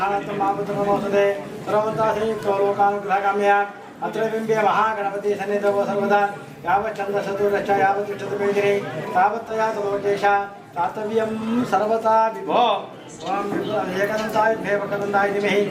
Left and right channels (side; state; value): both; identical; correlation 1.00